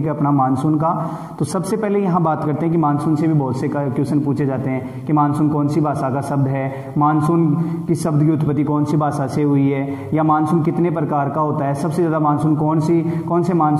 है अपना मानसून का। तो सबसे पहले यहाँ बात करते हैं कि मानसून से भी बहुत से क्वेश्चन पूछे जाते हैं कि मानसून कौन सी भाषा का शब्द है, मानसून की शब्द की उत्पत्ति कौन सी भाषा से हुई है, या मानसून कितने प्रकार का होता है, सबसे ज़्यादा मानसून कौन से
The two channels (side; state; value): both; identical; correlation 1.00